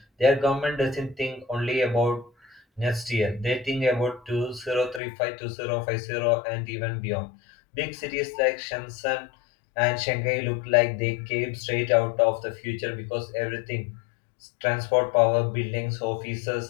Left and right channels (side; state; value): right; drops out; at 5.0 s